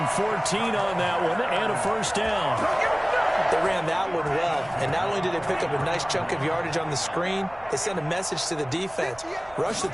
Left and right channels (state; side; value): noise; right; rumble, 24 dB below the sound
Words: 14 on that one and a 1st down. They ran that one well, and not only did they pick up a nice chunk of yardage on the screen, they sent a message to the defense. Rush the